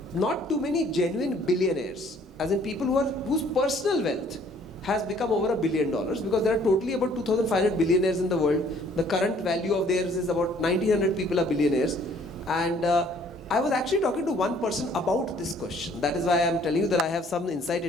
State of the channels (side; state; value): both; normal; correlation 0.59